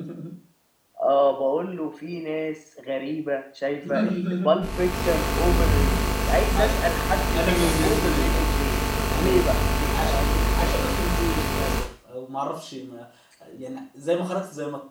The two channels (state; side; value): identical; both; correlation 1.00